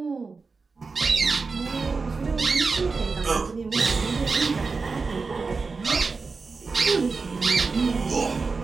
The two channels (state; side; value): quieter; left; 4.4 dB